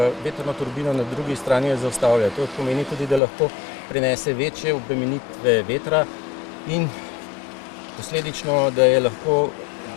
vetrno turbino, na drugi strani jo zaustavlja. To pomeni tudi, da lahko prenese večje obremenitve vetra in posledično, da je lahko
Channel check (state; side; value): drops out; right; at 3.2 s